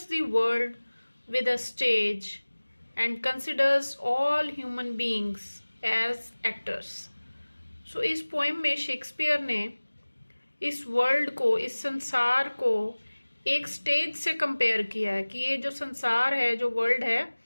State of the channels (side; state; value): both; inverted; correlation -1.00